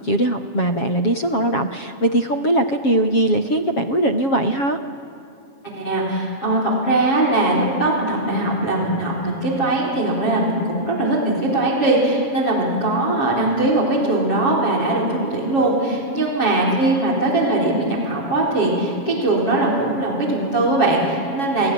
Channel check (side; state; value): right; late; 7.3 ms